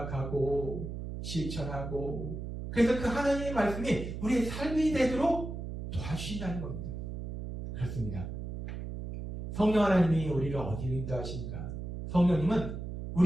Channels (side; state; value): right; noise; hum, 7 dB below the sound